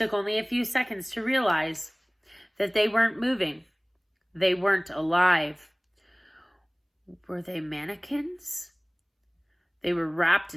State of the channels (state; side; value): identical; both; correlation 1.00